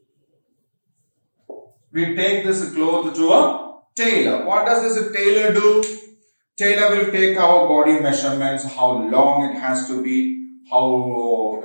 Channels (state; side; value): inverted; both; correlation -1.00